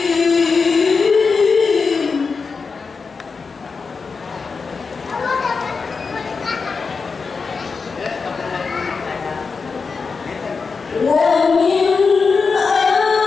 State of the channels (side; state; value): right; quieter; 4.9 dB